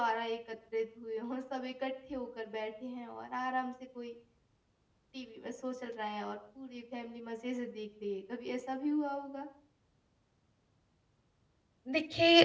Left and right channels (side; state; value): both; identical; correlation 1.00